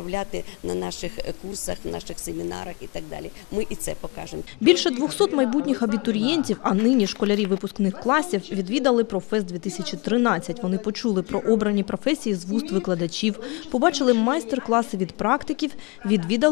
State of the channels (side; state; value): right; quieter; 28.1 dB